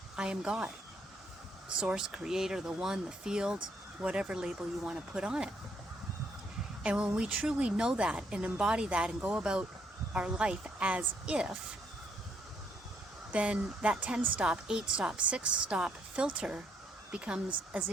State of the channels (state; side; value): normal; both; correlation 0.71